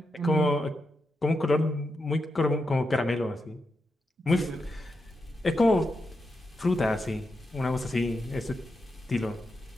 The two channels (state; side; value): normal; both; correlation 0.86